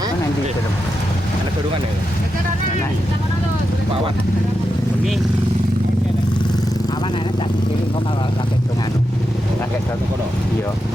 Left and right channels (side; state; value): both; normal; correlation 0.87